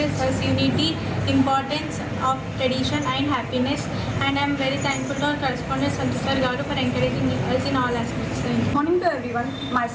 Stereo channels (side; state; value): both; identical; correlation 1.00